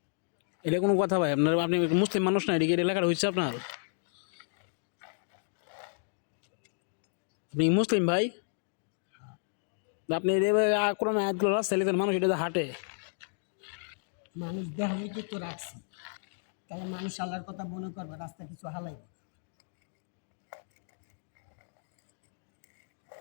এটা কোনো কথা ভাই? আপনার আপনি মুসলিম মানুষ না, এদিকে লেখাটা হচ্ছে আপনার? আপনি মুসলিম ভাই, আপনি কোরআন আয়াতগুলো রাস্তায় লিখেন, মানুষ এটা হাঁটে। মানুষ দেখাইতে তো রাখছি, তাহলে মানুষ আল্লাহর কথা মনে করবে, রাস্তা কিছু হালাইবে।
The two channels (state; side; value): silent; right; digital silence